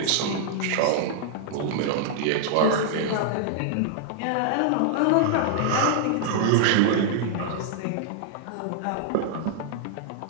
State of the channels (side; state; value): both; different; correlation -0.01